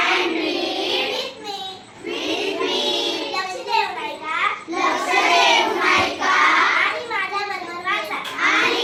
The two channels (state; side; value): identical; both; correlation 1.00